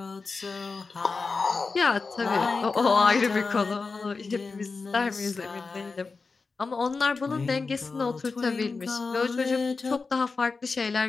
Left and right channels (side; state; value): right; quieter; 4.3 dB